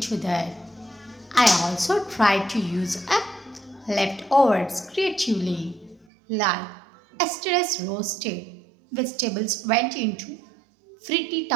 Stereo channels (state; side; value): drops out; left; at 6.1 s